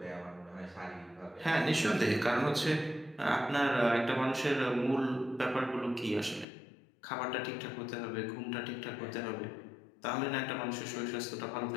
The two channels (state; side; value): drops out; right; at 6.5 s